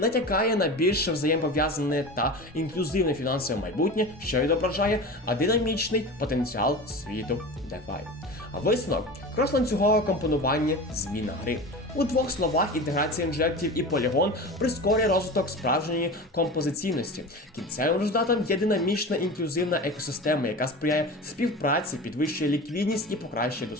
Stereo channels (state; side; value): normal; both; correlation 0.31